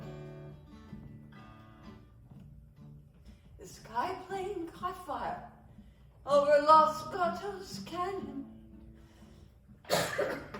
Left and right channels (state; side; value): identical; both; correlation 1.00